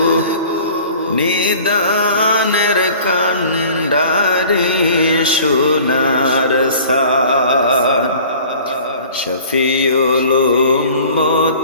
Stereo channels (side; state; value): both; inverted; correlation -0.47